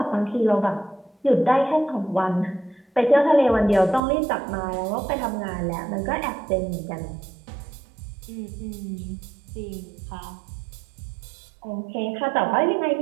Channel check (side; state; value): left; drops out; at 4.0 s